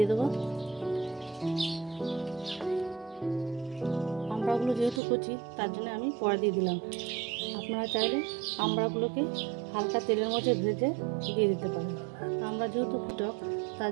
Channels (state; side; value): drops out; left; at 5.0 s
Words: দেবো। আমড়াগুলো যেহেতু কচি তার জন্য আমি পরে দিয়ে দিলাম। আপনারা চাইলে আমড়াগুলোকে হালকা তেলের মধ্যে ভেজে দিয়ে দিতে পারেন। আমড়া যেহেতু টক